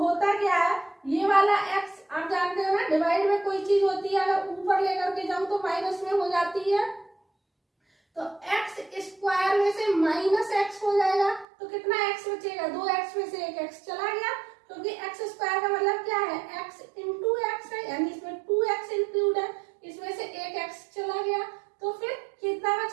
क्या है, ये वाला x आप जानते हो ना, डिवाइड में कोई चीज होती है अगर ऊपर लेकर के जाऊं तो माइनस में हो जाती है, तो x स्क्वायर में से माइनस x हो जाएगा, तो कितना x बचेगा, 2x में से 1x चला गया, क्योंकि x स्क्वायर का मतलब क्या है, x इंटू x है, यानी इसमें 2x इंक्लूड है, इसमें से 1x चला गया, तो फिर कितना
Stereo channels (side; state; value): left; drops out; at 11.5 s